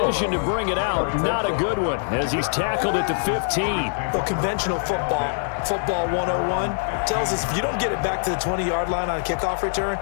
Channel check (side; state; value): right; silent; digital silence